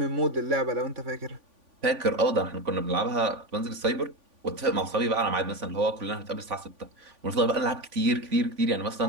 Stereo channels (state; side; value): late; left; 3.5 ms